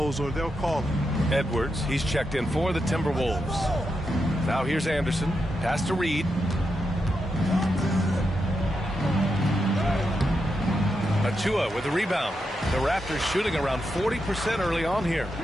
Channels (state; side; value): normal; both; correlation 0.85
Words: or they'll call it. Edwards, he's checked in for the Timberwolves. Now here's Anderson. Pass to Reed. Achua with the rebound. The Raptors shooting around 40% early on here.